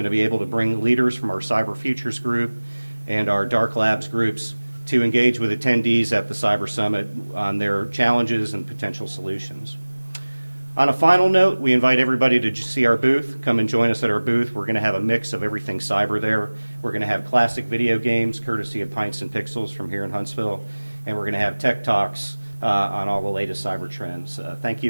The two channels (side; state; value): both; inverted; correlation -1.00